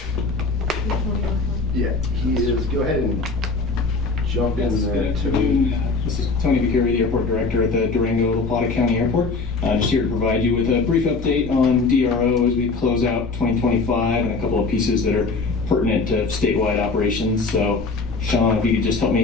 Yeah, he is. Go ahead and jump in there. Good afternoon. This is Tony Vicari, the airport director at the Durango La Plata County Airport. Just here to provide you with a brief update on DRO as we close out 2025 and a couple of pieces that are pertinent to statewide operations. So, Sean, if you could just help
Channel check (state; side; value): quieter; right; 4.0 dB